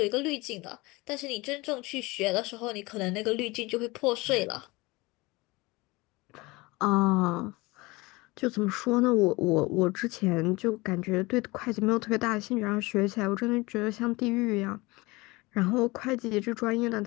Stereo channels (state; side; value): quieter; right; 23.0 dB